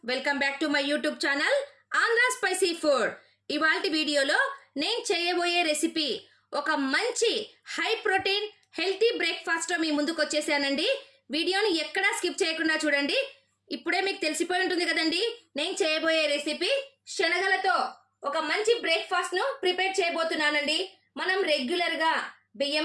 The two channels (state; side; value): identical; both; correlation 1.00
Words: Welcome back to my YouTube channel Andhra spicy food. ఇవాల్టి వీడియోలో నేను చేయబోయే రెసిపీ ఒక మంచి హై ప్రోటీన్ హెల్తీ బ్రేక్ఫాస్ట్ మీ ముందుకు వచ్చేసానండి. వీడియోని ఎక్కడా స్కిప్ చేయకుండా చూడండి. ఇప్పుడే మీకు తెలిసిపోయి ఉంటుంది కదండి, నేను చేయబోయే రెసిపీ శనగలతో ఒక మంచి బ్రేక్ఫాస్ట్ ను ప్రిపేర్ చేయబోతున్నానండి. మనం రెగ్యులర్ గా